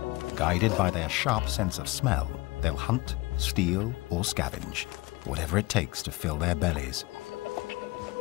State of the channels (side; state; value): right; quieter; 21.8 dB